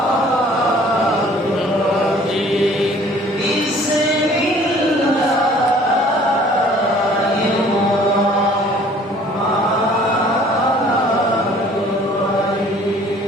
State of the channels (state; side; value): normal; both; correlation 0.54